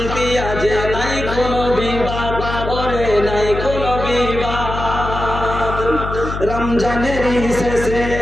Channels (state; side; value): noise; left; hum, 6 dB below the sound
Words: আজ নাই কোনো বিবাদ, ওরে নাই কোনো বিবাদ। রমজানের শেষে